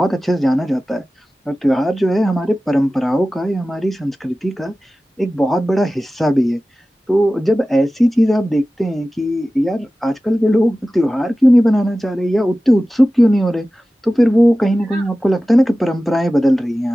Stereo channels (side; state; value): both; normal; correlation 0.96